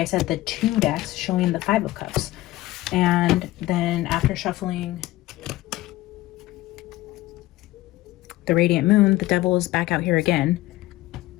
said, the 2 decks showing the Five of Cups. And then after shuffling the Radiant Moon, the Devil is back out here again.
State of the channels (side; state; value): right; quieter; 17.3 dB